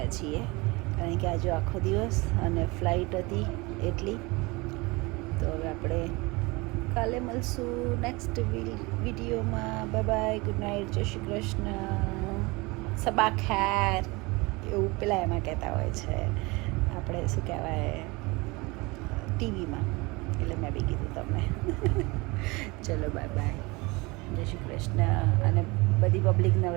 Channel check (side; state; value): left; quieter; 24.8 dB